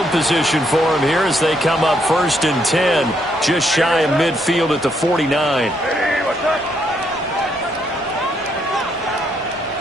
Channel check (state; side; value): normal; both; correlation 0.74